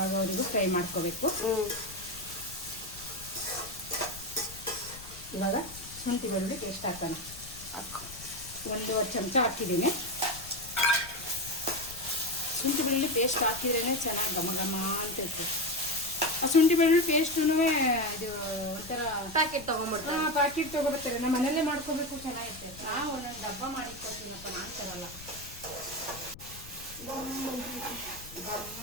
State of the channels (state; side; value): noise; left; rumble, 17 dB below the sound